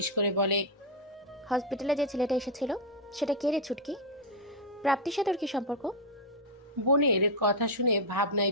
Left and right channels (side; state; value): both; normal; correlation 0.01